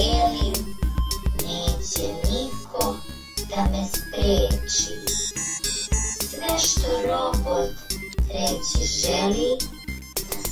neće niko da me spreči. Sve što robot reći želi, na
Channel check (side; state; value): both; identical; correlation 1.00